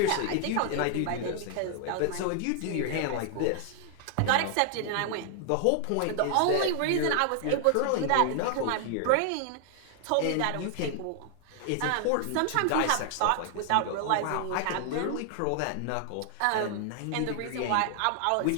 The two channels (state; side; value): different; both; correlation 0.00